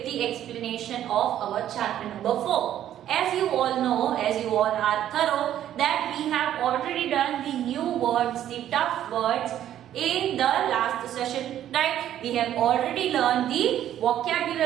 the explanation of our chapter number 4. As you all know, as you all are thorough, that we have already done the new words, the tough words in the last session, right? We have already learned the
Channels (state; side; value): quieter; left; 11.4 dB